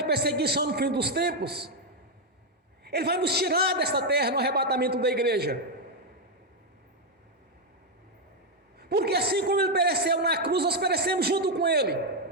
perseguição no fim dos tempos, Ele vai nos tirar desta terra no arrebatamento da igreja. Porque assim como Ele pereceu na cruz, nós perecemos junto com Ele.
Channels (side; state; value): both; normal; correlation 0.03